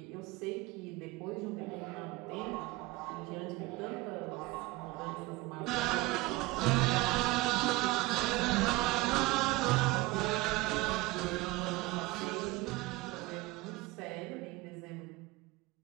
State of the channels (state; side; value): quieter; left; 20.8 dB